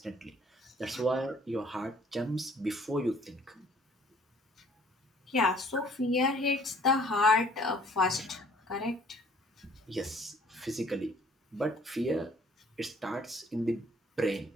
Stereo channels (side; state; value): both; normal; correlation 0.57